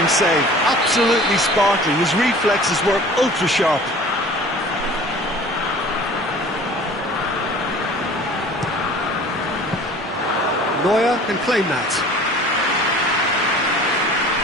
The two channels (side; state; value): both; normal; correlation 0.45